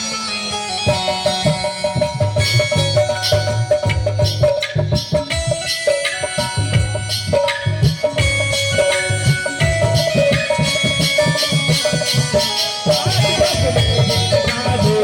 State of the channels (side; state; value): both; identical; correlation 1.00